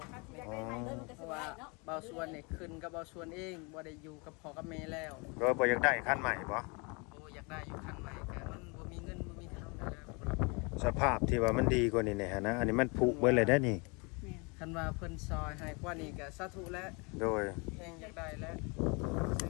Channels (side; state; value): right; quieter; 30.7 dB